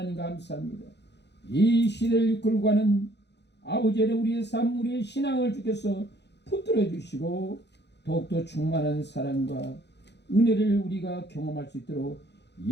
감사합니다. 이 시대를 이끌고 가는 아버지의 우리의 삶, 우리의 신앙을 주께서 붙들어 주시고 더욱더 충만한 사랑과 은혜를 우리가 경험할 수 있도록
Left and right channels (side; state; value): right; late; 0.50 ms